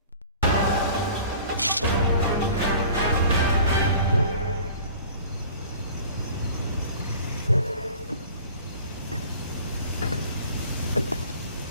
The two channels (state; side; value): inverted; both; correlation -0.46